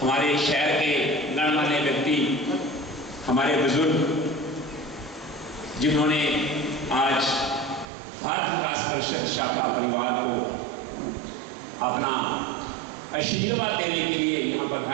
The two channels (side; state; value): left; drops out; at 7.9 s